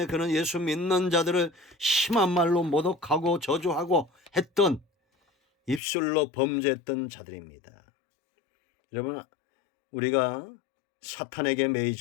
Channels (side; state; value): right; drops out; at 5.8 s